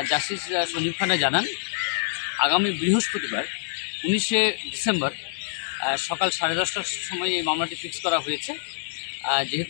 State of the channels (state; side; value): silent; right; digital silence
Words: জাস্টিস সঞ্জীব খান্না জানান আগামী বৃহস্পতিবার 19শে ডিসেম্বর সকাল 10:30টার সময় এই মামলাটি ফিক্স করা হয়েছে।